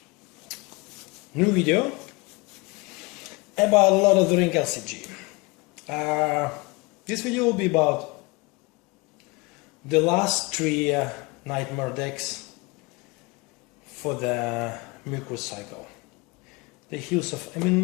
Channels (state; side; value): quieter; right; 26.1 dB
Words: new video about LOTR LCG. This video will be about the last three Nightmare decks for the Mirkwood cycle. The Hills of Emyn